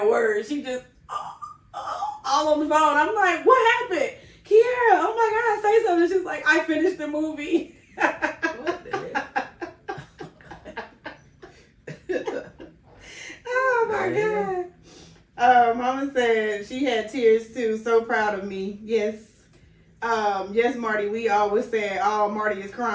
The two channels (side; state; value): both; identical; correlation 1.00